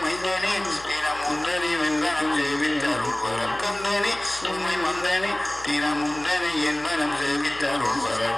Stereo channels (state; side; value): noise; left; hum, 20 dB below the sound